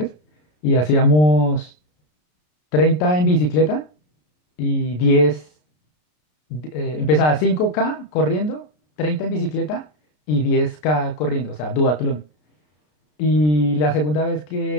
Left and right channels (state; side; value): late; right; 33 ms